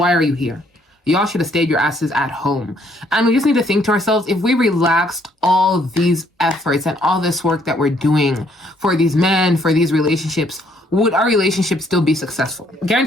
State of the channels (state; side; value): normal; both; correlation 0.67